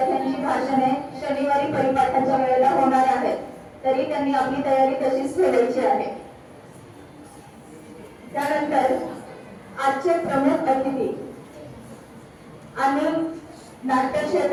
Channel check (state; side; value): identical; both; correlation 1.00